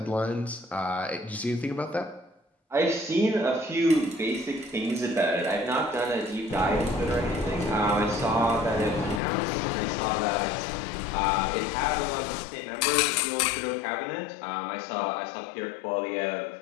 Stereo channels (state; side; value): drops out; right; at 9.2 s